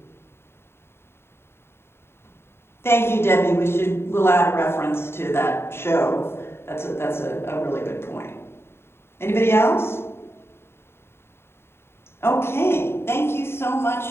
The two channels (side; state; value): right; late; 0.12 ms